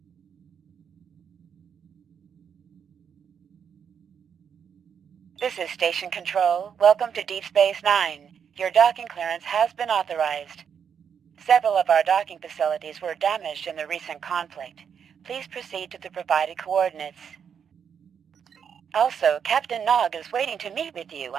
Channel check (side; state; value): left; quieter; 7.5 dB